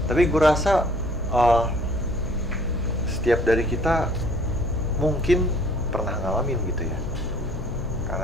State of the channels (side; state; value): left; noise; hum, 11 dB below the sound